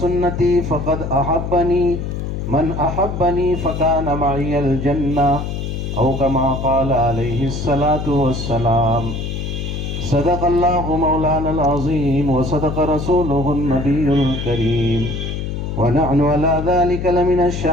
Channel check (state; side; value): noise; left; hum, 4 dB below the sound